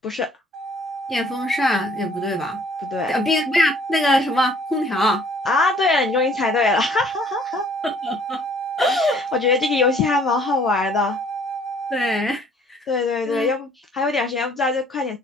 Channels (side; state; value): both; normal; correlation 0.58